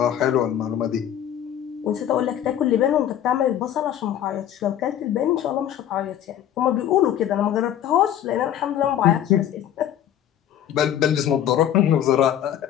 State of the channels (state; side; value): quieter; right; 10.7 dB